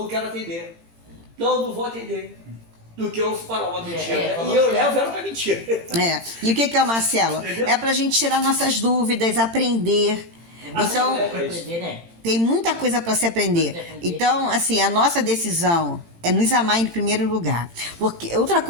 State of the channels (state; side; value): late; left; 18 ms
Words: quero atender. Não vou atender. Do que eu falar uma mentira. né? falou E eu certo. levo ela pra mentira. E o que é o Marcelo? Entendeu? É pra gente tirar nossas dúvidas, aprender. Então, é Pra aprender, né? tem muita coisa para se aprender. Então, assim, a nossa decisão é nos amar em primeiro lugar. Porque outra